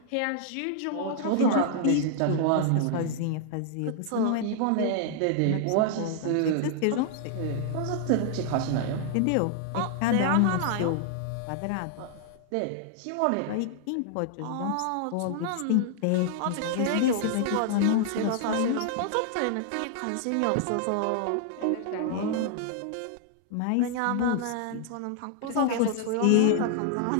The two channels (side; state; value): both; different; correlation 0.00